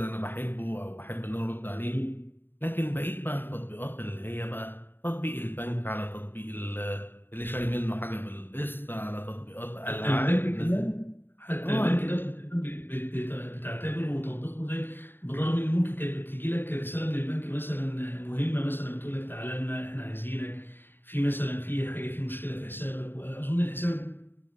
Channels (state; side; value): late; right; 0.097 ms